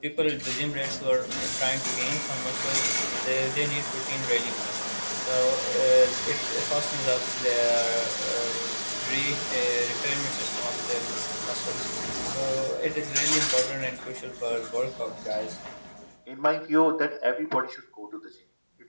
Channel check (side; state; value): both; inverted; correlation -1.00